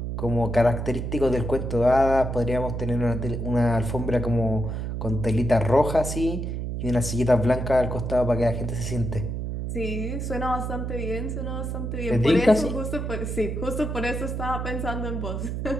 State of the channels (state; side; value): noise; right; hum, 4 dB below the sound